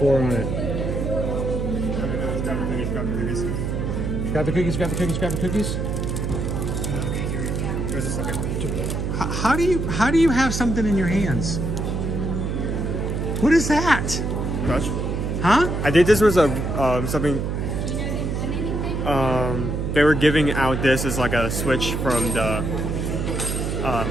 on it. Grab the cookies, grab the cookies, grab the cookies. Okay, here. Where's the second? How do you have something in your hands? What is that? Touch. Huh? I think this was a something. They were giving out this as like a switch from the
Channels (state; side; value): noise; right; hum, 1 dB below the sound